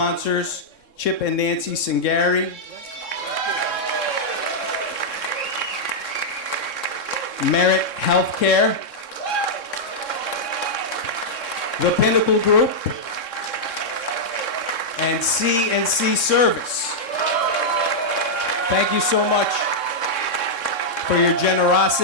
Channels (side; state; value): right; late; 3.7 ms